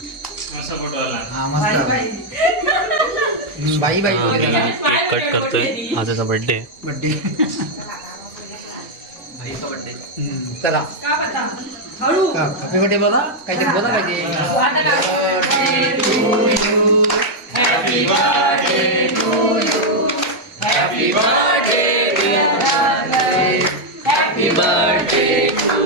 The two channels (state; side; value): normal; both; correlation -0.01